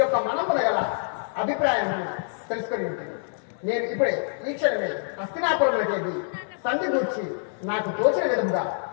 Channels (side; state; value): right; silent; 61 dB below the other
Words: మనమున గల అభిప్రాయం తెలుసుకొని ఉంటుంది. నేను ఇప్పుడే ఈ క్షణమే హస్తినాపురంలోకి సంధి గూర్చి నాకు తోచిన విధంగా